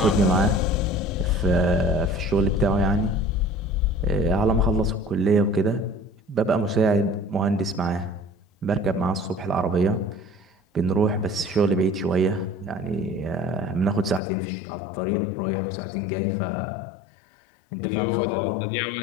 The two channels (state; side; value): drops out; right; at 14.2 s